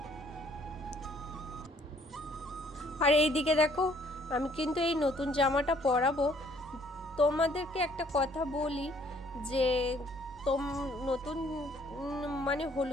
আর এইদিকে দেখো আমি কিন্তু এই নতুন জামাটা পরাবো। তোমাদেরকে একটা কথা বলি যে নতুন মানে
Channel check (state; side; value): normal; both; correlation 0.62